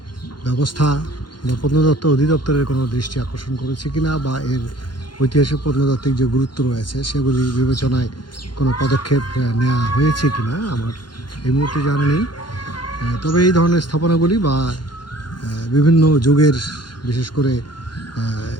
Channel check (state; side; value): late; right; 0.71 ms